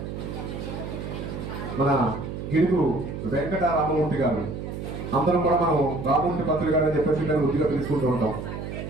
మన గిడుగు వెంకట రామమూర్తి గారు. అందరం కూడా మనం రామమూర్తి పంతులు గారు అని చెప్పేసి మేము వృద్ధిగా పిలుచుకుంటూ ఉంటాం.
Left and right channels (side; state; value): right; noise; hum, 7 dB below the sound